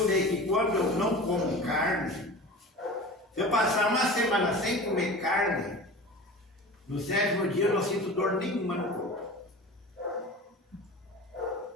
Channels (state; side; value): normal; both; correlation 0.35